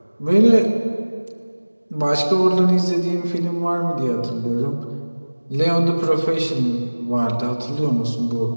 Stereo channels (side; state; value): both; inverted; correlation -1.00